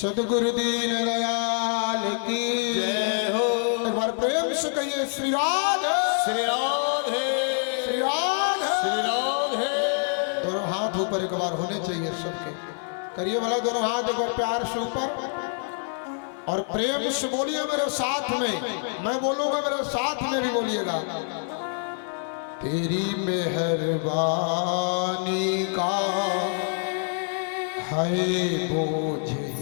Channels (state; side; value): silent; right; 61 dB below the other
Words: दीन दयाल की जय हो। एक बार प्रेम से कहिए श्री राधे, श्री राधे, श्री राधे। श्री राधे। दोनों हाथ ऊपर एक बार होने चाहिए सबके, करिए भला दोनों हाथ एक बार प्यार से ऊपर और प्रेम से बोलिए मेरे साथ में, मैं बोलूंगा मेरे साथ में भी बोलिएगा। तेरी मेहरबानी का है बोझ